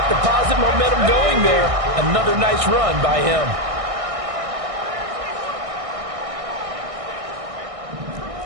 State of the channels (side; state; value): left; late; 1.6 ms